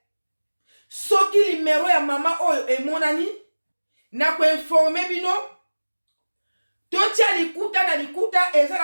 soki limero ya mama oyo emonani na ko informer bino totia likuta na likuta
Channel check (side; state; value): both; inverted; correlation -1.00